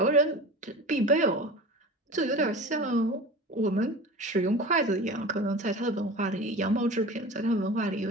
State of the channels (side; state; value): both; normal; correlation 0.35